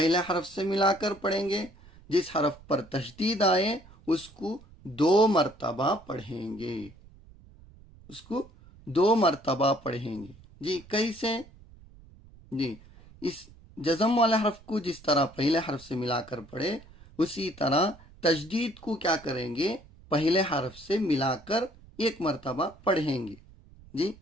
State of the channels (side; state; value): right; noise; rumble, 23 dB below the sound